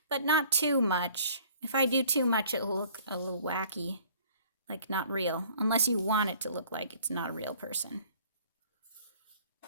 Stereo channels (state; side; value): inverted; both; correlation -0.54